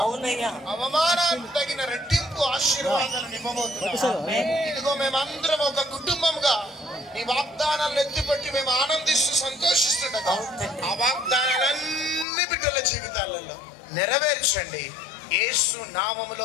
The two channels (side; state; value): right; drops out; at 12.2 s